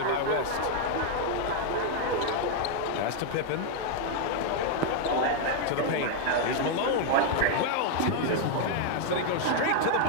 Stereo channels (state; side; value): different; both; correlation 0.00